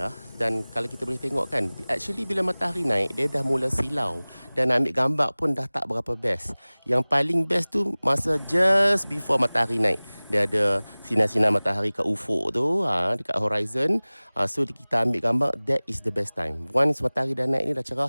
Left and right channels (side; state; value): both; inverted; correlation -1.00